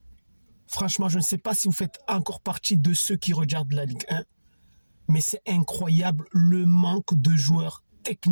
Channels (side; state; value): both; inverted; correlation -1.00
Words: Franchement, je ne sais pas si vous faites encore partie de ceux qui regardent la Ligue 1, mais c'est incroyable le manque de joueurs